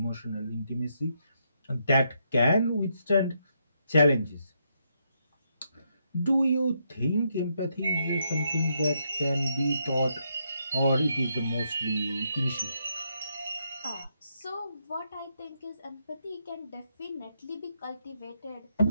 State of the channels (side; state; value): both; inverted; correlation -0.78